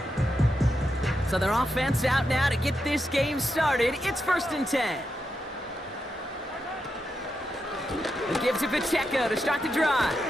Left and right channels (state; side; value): normal; both; correlation 0.85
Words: So their offense out now to get this game started. It's 1st and 10. He gives it Pacheco to start the drive.